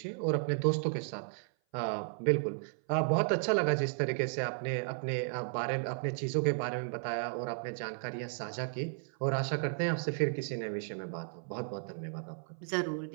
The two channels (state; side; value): silent; left; 55 dB below the other